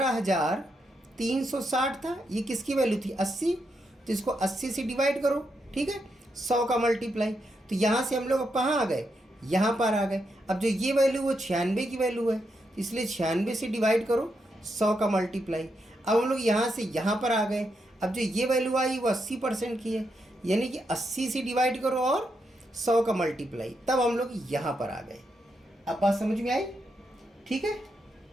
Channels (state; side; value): normal; both; correlation 0.82